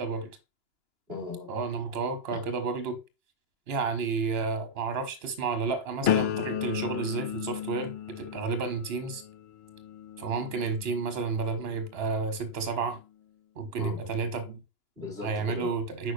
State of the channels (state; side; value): late; left; 2.9 ms